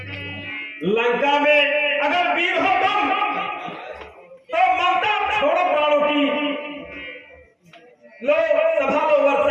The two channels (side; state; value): both; identical; correlation 1.00